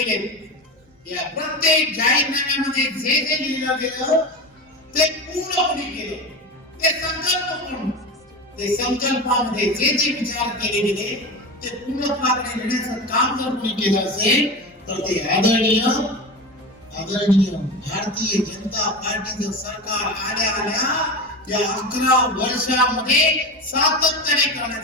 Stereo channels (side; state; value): both; normal; correlation 0.25